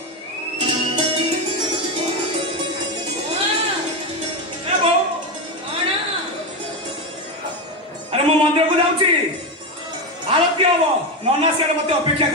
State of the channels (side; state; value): both; normal; correlation 0.13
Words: ଏ ବୋଉ ଆରେ ମୁଁ ମନ୍ଦିରକୁ ଯାଉଛି ଆଳତି ହବ ନନା ସିଆଡେ ମତେ ଅପେକ୍ଷା